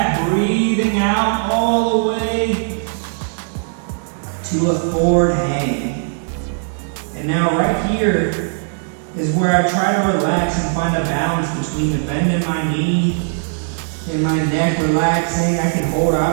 breathing out all the way to a forward hang. And now right here is where I try to relax and find a balance between the bend in my knee and my neck relaxing. I can hold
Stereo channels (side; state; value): left; silent; 67 dB below the other